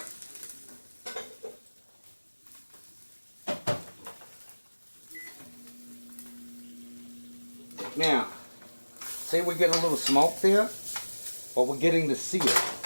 Now, say we're getting a little smoke there, but we're getting the sear.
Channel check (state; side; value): inverted; both; correlation -1.00